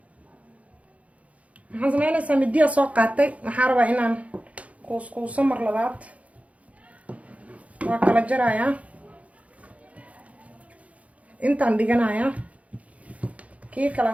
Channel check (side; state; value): left; late; 0.066 ms